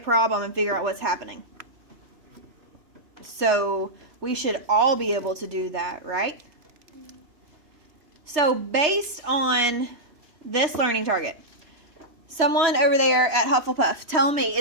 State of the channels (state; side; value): late; left; 3.3 ms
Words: and figure out what's happening. So we should all be able to do that, right? So based on this learning target, someone over there at Hufflepuff, tell me,